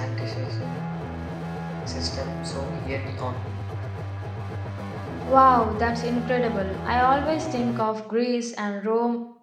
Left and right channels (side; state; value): both; identical; correlation 1.00